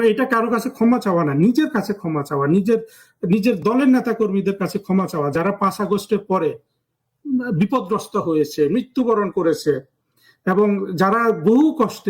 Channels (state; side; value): identical; both; correlation 1.00